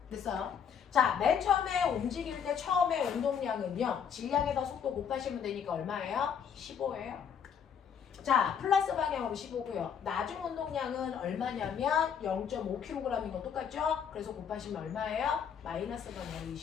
됐어요? 자, 맨 처음에 움직일 때 처음에 운동량은요 질량에다 속도 곱하시면 되니까 얼마예요? 15예요. 자, 플러스 방향으로 15고요. 나중 운동량은 얼마냐면 0.5kg인 거 똑같죠? 그래서 곱하시면 얼마예요? 마이너스 방향으로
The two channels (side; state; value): right; quieter; 7.6 dB